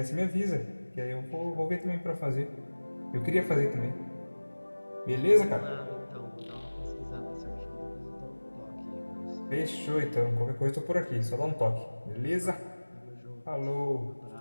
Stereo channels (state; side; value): inverted; both; correlation -1.00